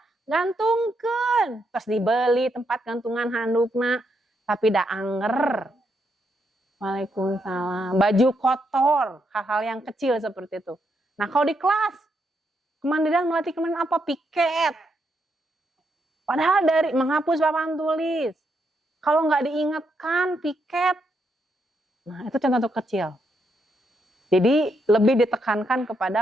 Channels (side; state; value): both; normal; correlation 0.79